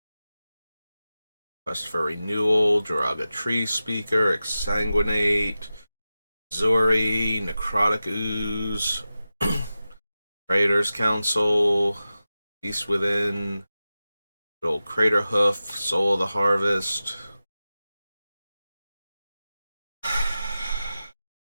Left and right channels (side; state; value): both; inverted; correlation -0.94